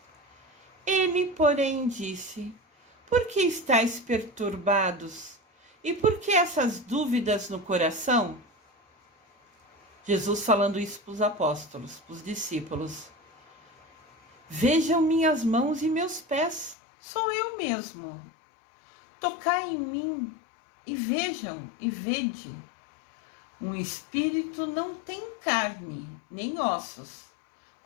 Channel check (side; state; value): right; drops out; at 16.8 s